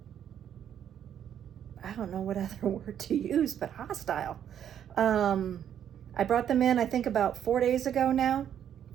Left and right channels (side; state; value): left; quieter; 9.6 dB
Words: don't know what other word to use, but hostile. I brought them in, I think about 4 days ago now,